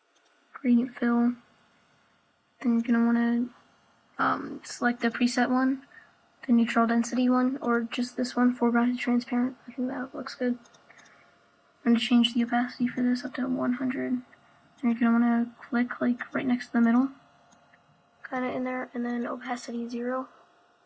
fill. Then you're gonna wanna select the preset one, the neutral density one, or just this one, foreground transparent. I think that looks good. I'm going to change the opacity for this up to 100. And you're going to want to click like right next to the middle, kind of in there, and then opacity 0.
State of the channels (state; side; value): identical; both; correlation 1.00